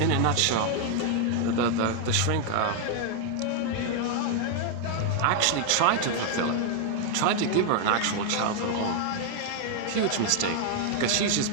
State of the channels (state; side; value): different; both; correlation 0.00